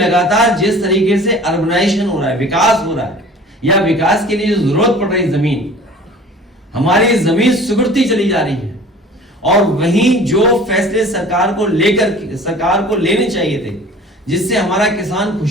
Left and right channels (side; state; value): both; normal; correlation 0.45